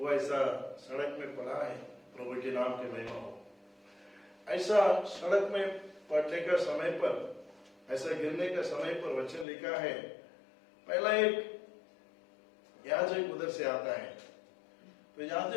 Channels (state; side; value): drops out; right; at 9.5 s